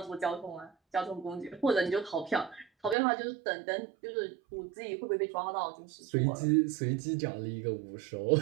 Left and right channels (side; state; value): left; drops out; at 3.0 s